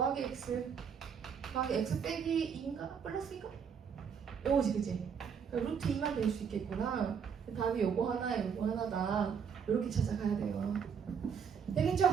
x 더하기 x 빼기 2인가? 플러스인가? 요거지 그치? 그러니까 루트 2만 될 수 있겠구나. 답이 요거 하나에 요거 하나다. 이렇게 찾아가야 돼요. 되겠죠?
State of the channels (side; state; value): left; quieter; 6.9 dB